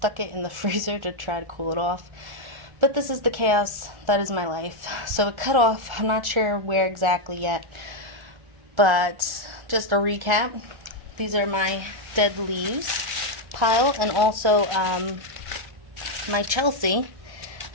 it in the freezer to try to cool it off. But this is the chaos that is my life. So it cut off. I'm not sure where exactly yet. But just a recap. These are my dead leaves pile. And also my Chelsea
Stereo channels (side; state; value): left; late; 1.3 ms